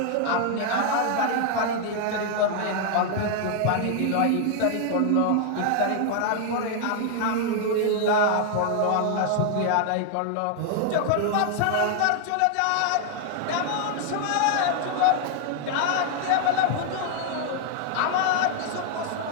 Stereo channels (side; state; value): both; different; correlation 0.00